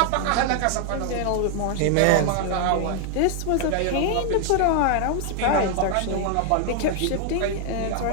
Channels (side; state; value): both; different; correlation 0.00